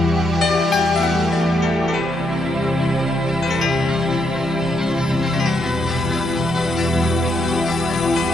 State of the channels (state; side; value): normal; both; correlation 0.78